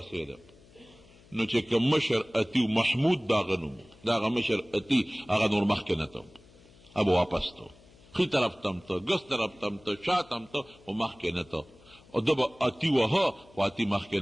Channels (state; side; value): noise; left; hum, 26 dB below the sound